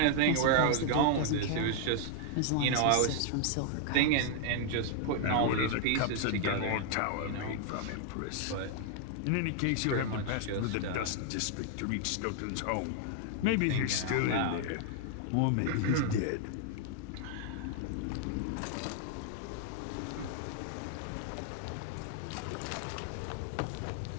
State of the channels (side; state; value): both; different; correlation 0.00